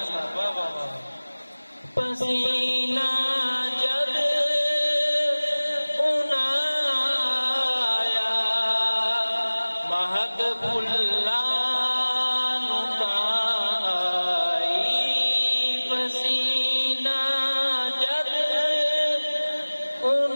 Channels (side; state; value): both; inverted; correlation -1.00